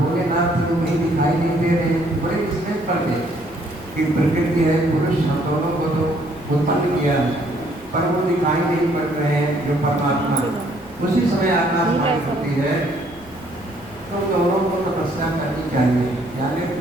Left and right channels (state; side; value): noise; left; rumble, 23 dB below the sound